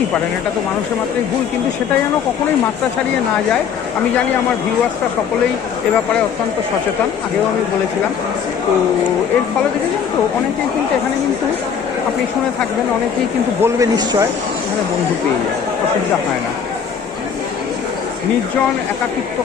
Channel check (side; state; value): right; quieter; 7.3 dB